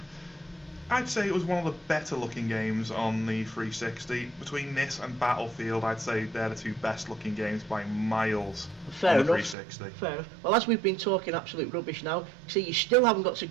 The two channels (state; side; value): drops out; left; at 9.6 s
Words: I'd say it was one of the better looking games on the 360. Between this and Battlefield, I'd say they're the two best looking games by miles Fair on the enough. 360. Fair enough. Well, as we've been talking absolute rubbish now, see, you still haven't got to